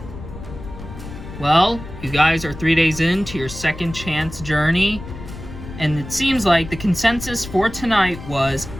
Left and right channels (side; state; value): left; noise; rumble, 12 dB below the sound